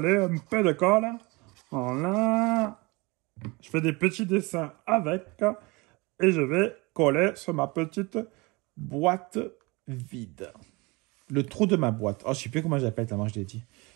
un peu de colle. Voilà. Je fais des petits dessins avec. Et je vais coller sur ma petite boîte vide. Le trou de ma boîte. Oh, je ne sais plus comment j'appelle, tellement je l'ai dit.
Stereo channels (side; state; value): left; quieter; 25.6 dB